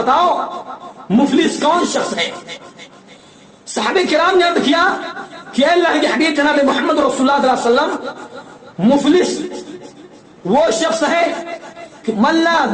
مفلس کون شخص ہے؟ صحابہ کرام نے عرض کیا کہ اللہ کے حبیب جناب محمد رسول اللہ صلی اللہ علیہ وسلم, مفلس وہ شخص ہے کہ من لا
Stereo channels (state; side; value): identical; both; correlation 1.00